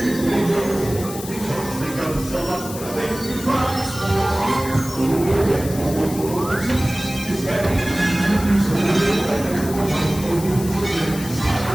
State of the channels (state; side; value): noise; left; hiss, 12 dB below the sound